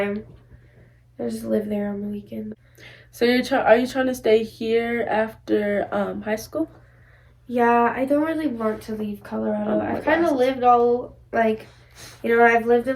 I just live there on the weekend. So are you trying to stay here after high school? Yeah, I don't really want to leave Colorado. Oh, I've kind of lived all, like, you know, I've lived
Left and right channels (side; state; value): both; identical; correlation 1.00